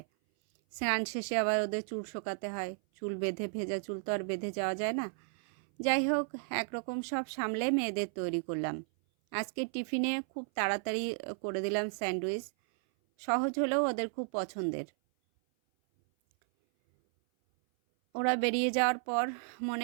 স্নান শেষে আবার ওদের চুল শোকাতে হয়, চুল বেঁধে, ভেজা চুল তো আর বেঁধে যাওয়া যায় না। যাই হোক, একরকম সব সামলে মেয়েদের তৈরি করলাম। আজকে টিফিনে খুব তাড়াতাড়ি করে দিলাম স্যান্ডউইচ, সহজ হলেও ওদের খুব পছন্দের। ওরা বেরিয়ে যাওয়ার পর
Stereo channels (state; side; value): silent; left; 55 dB below the other